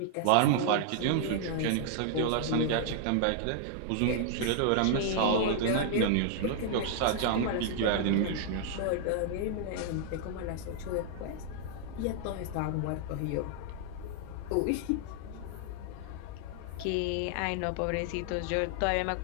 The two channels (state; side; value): different; both; correlation 0.00